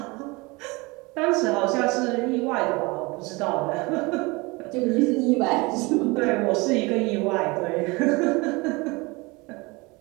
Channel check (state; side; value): quieter; left; 25.2 dB